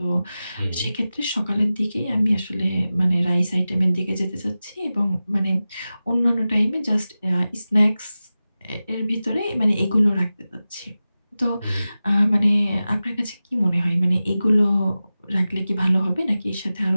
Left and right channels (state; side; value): inverted; both; correlation -0.95